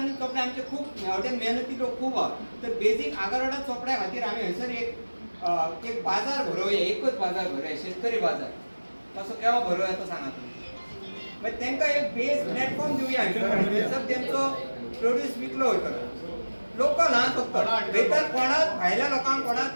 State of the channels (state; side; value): inverted; both; correlation -1.00